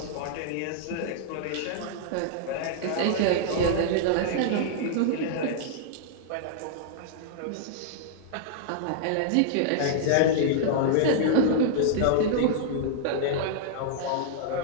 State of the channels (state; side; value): different; both; correlation -0.01